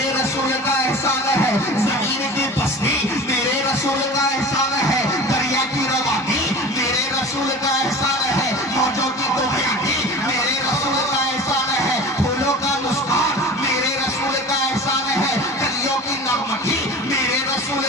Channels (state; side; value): normal; both; correlation 0.37